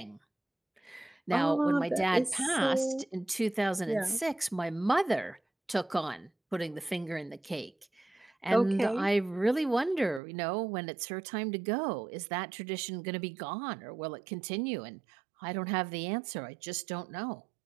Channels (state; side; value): drops out; left; at 10.2 s